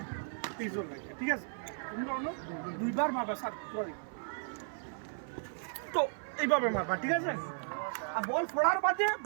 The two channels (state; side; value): silent; left; 54 dB below the other